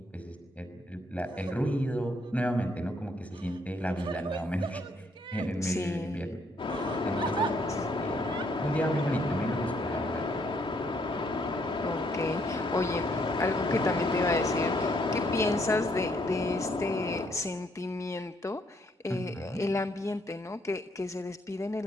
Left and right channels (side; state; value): both; normal; correlation 0.70